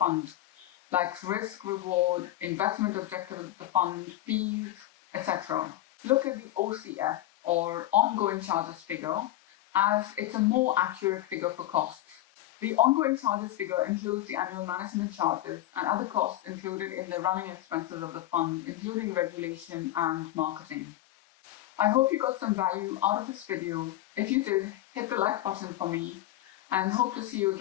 like risk, reward, investment objective of the fund, fees, etc. Look at the OCF, or ongoing charges figure, as it's a more accurate figure for costs. The ongoing charges figure includes the annual management charges and other costs included in the running expenses of the fund, including regulation and marketing. I hope you got some value out of this video. If you did, hit the like button for me and hope to see you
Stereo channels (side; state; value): right; quieter; 14.5 dB